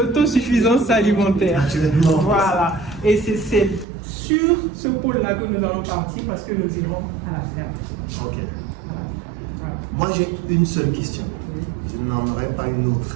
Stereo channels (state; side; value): drops out; left; at 3.9 s